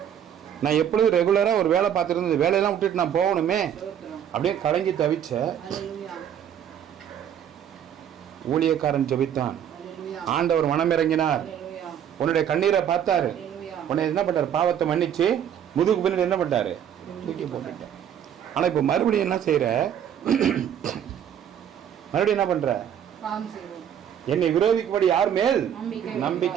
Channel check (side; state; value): left; quieter; 9.3 dB